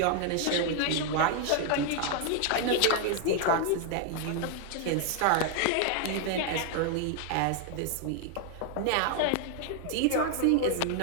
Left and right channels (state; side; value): different; both; correlation 0.00